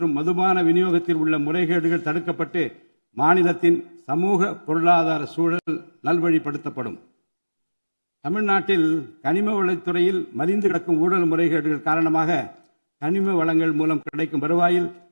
மதுபான விநியோகத்தில் உள்ள முறைகேடுகள் தடுக்கப்பட்டு மாநிலத்தின் சமூக பொருளாதார சூழல் நல்வழிப்படுத்தப்படும். தமிழ்நாட்டில் கனிம வளத்துறையில் மலிந்து கிடக்கும் ஊழல் முறைகேடுகள் காரணமாக கனிம வளங்கள் மூலம் கிடைக்கும் வருவாயில்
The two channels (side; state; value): both; inverted; correlation -1.00